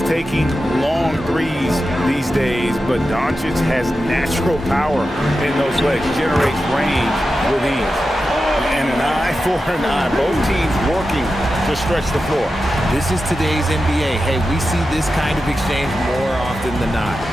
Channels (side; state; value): both; normal; correlation 0.91